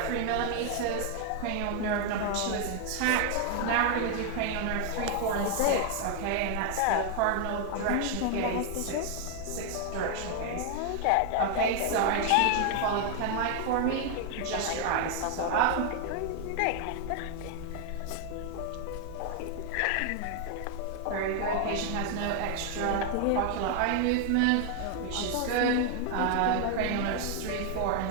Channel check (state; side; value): different; both; correlation 0.00